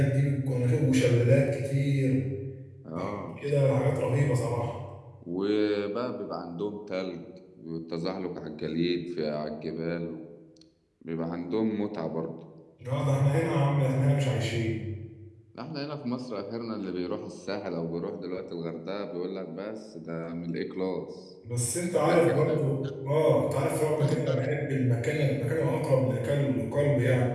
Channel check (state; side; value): identical; both; correlation 1.00